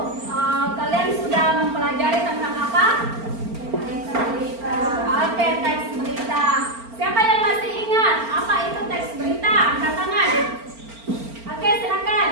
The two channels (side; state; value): left; late; 4.4 ms